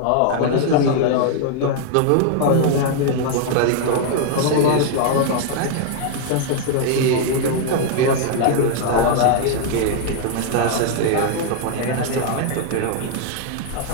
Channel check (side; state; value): both; different; correlation 0.00